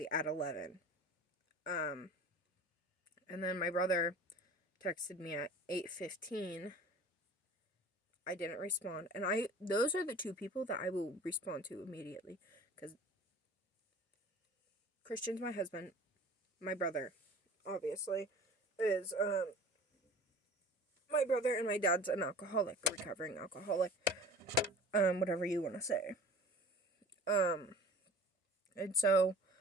at 11. And then my brother texted me at 8:15. I didn't respond. And those are the two people that I will respond to immediately. Because Christian's my husband. My brother, obviously, is, my brother, and my dad's an alcoholic, a recovering alcoholic. Whatever you want to say. And so,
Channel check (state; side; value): normal; both; correlation 0.42